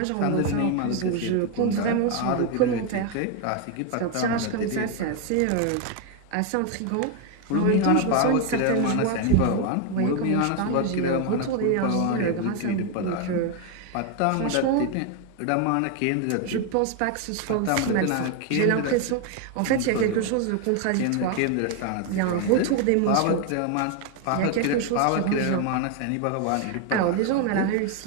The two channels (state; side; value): different; both; correlation 0.01